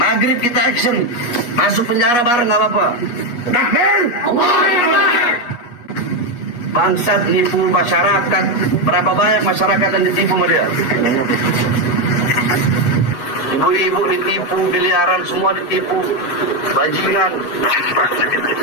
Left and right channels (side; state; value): right; late; 8.3 ms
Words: kita action. Masuk penjara bareng nggak apa-apa. Takbir! Allahu Akbar! Bangsat nipu masyarakat. Berapa banyak masyarakat yang ditipu sama dia? Ibu-ibu ditipu, miliaran semua ditipu, bajingan.